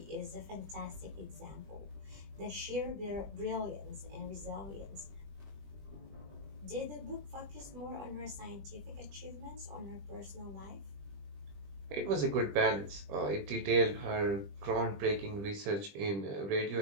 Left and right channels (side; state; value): left; late; 20 ms